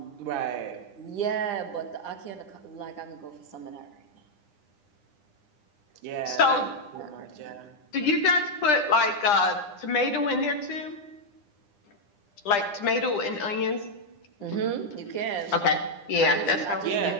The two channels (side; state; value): right; late; 9.9 ms